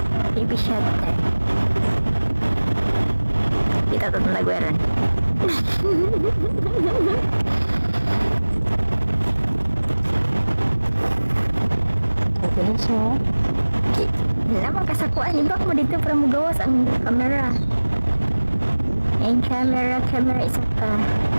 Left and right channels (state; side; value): inverted; both; correlation -1.00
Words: TV shutter. Kita to nalagweran. Okay na siya. Lamang kasakuan. Ibak mo dito para mo gawas ang camera. Yung camera isa pa.